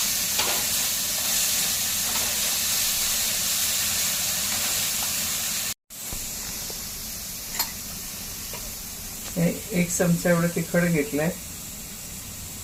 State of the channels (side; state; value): both; identical; correlation 1.00